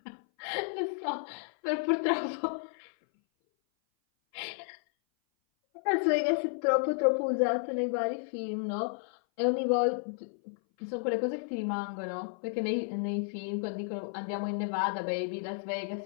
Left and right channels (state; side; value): silent; right; 56 dB below the other